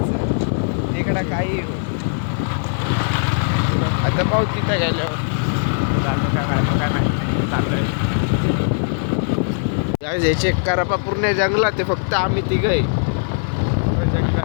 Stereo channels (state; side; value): silent; right; 64 dB below the other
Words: इकडं काही हो. आता पाहू तिथं गेल्यावर चाललोय. हे चेक करा पा पूर्ण जंगलात आहे. फक्त आम्ही तिघं